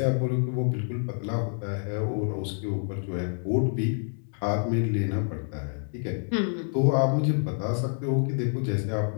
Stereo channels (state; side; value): silent; right; 55 dB below the other